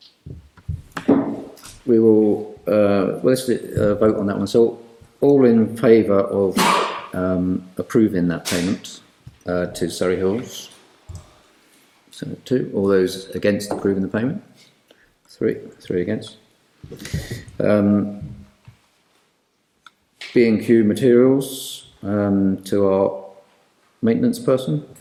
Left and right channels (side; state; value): both; identical; correlation 1.00